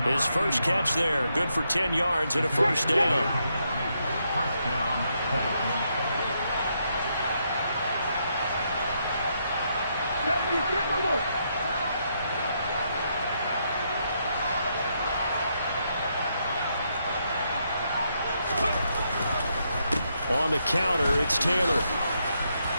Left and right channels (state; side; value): inverted; both; correlation -0.78